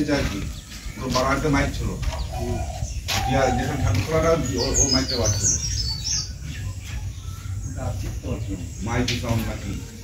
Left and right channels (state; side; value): identical; both; correlation 1.00